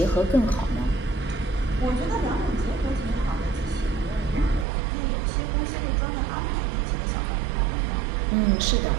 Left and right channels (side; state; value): left; drops out; at 4.7 s